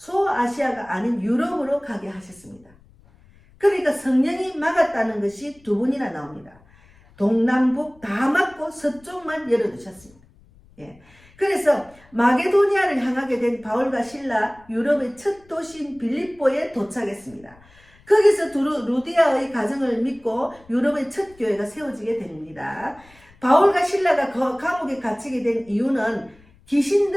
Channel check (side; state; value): left; noise; rumble, 28 dB below the sound